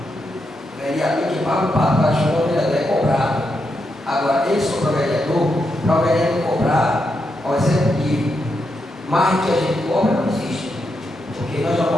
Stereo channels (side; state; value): both; normal; correlation 0.83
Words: Vereador que paga o pato para chamar o vereador é cobrado. Agora, ele só para o vereador cobrar ao executivo. Mais que a gente cobra não existe. Porque nós já